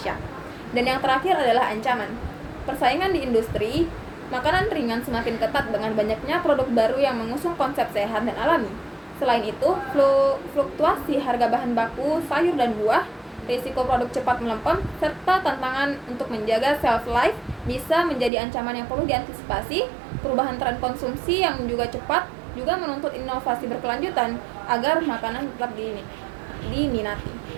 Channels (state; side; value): drops out; left; at 18.3 s